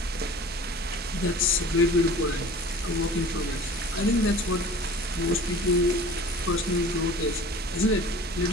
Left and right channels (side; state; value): both; normal; correlation 0.43